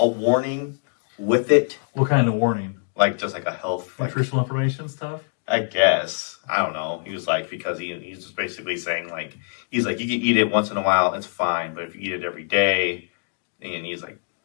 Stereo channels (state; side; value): silent; right; digital silence